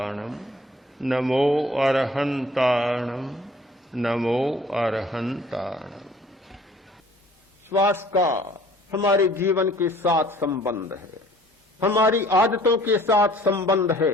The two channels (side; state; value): both; normal; correlation 0.54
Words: नमो अरहंताणम नमो अरहंताणम। श्वास का हमारे जीवन के साथ संबंध है, हमारी आदतों के साथ संबंध